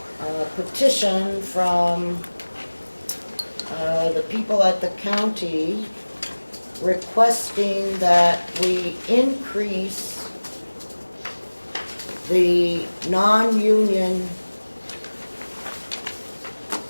petition from the people at the county requesting that we increase the non-union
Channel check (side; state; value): both; inverted; correlation -1.00